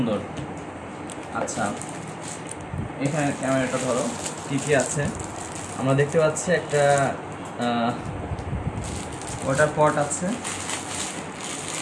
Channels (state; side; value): identical; both; correlation 1.00